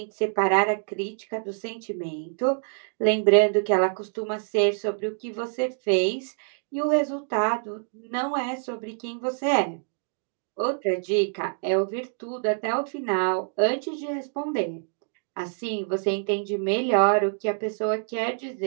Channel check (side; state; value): left; silent; digital silence